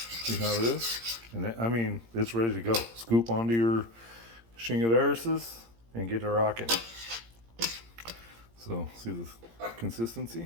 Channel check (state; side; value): late; left; 17 ms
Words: See how it is? And that, it's ready to go. Scoop onto your chingaderises and get it rocking. So see the